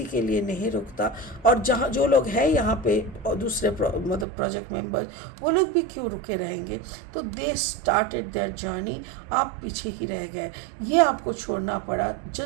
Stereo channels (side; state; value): left; drops out; at 4.2 s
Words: के लिए नहीं रुकता। और जहाँ जो लोग हैं यहाँ पे दूसरे मतलब प्रोजेक्ट मेंबर, वो लोग भी क्यों रुके रहेंगे। तो दे स्टार्टेड देयर जर्नी, आप पीछे ही रह गए। ये आपको छोड़ना पड़ा